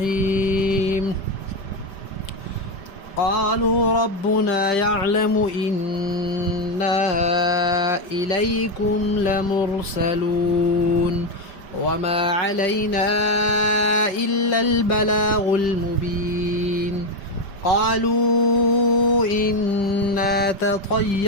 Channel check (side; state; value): right; late; 5.1 ms